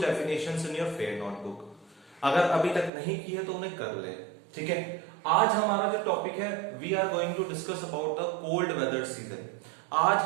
definitions in your fair notebook. अगर अभी तक नहीं की है तो उन्हें कर ले. ठीक है. आज हमारा जो टॉपिक है, we are going to discuss about the cold weather season. आज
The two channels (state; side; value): drops out; left; at 2.9 s